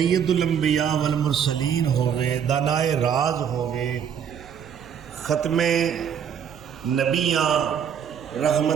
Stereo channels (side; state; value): left; quieter; 8.1 dB